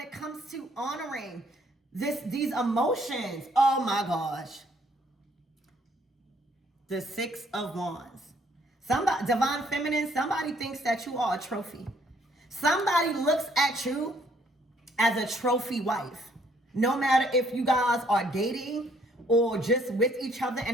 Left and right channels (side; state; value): both; normal; correlation 0.65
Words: comes to honoring these emotions. Oh my gosh. The Six of Wands. Somebody, divine feminine, somebody thinks that you are a trophy. Somebody looks at you as a trophy wife. No matter if you guys are dating or just with each other